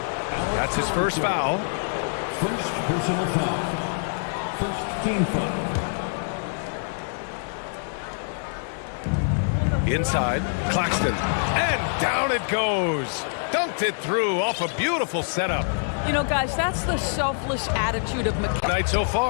That's his first foul. First personal foul. First team foul. Inside, Claxton. And down it goes. Dunked it through off a beautiful setup. You know, guys, that's the selfless attitude of McKay. Night so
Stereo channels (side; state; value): right; silent; digital silence